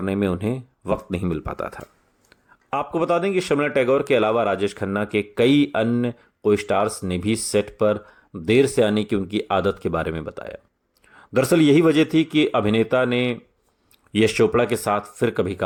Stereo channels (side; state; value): both; identical; correlation 1.00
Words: में उन्हें वक्त नहीं मिल पाता था। आपको बता दें कि शर्मिला टैगोर के अलावा राजेश खन्ना के कई अन्य को स्टार्स ने भी सेट पर देर से आने की उनकी आदत के बारे में बताया। दरअसल यही वजह थी कि अभिनेता ने यश चोपड़ा के साथ फिर कभी